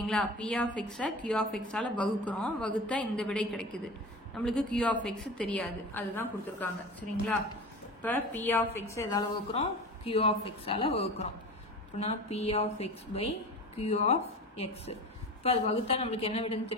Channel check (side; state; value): both; normal; correlation 0.33